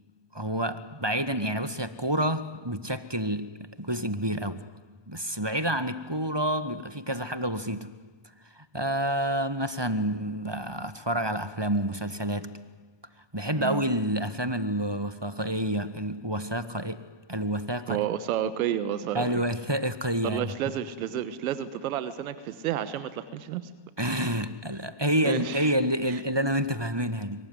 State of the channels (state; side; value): late; left; 1.2 ms